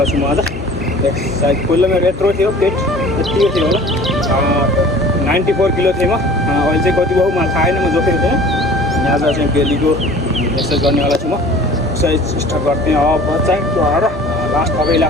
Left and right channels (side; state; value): both; normal; correlation 0.46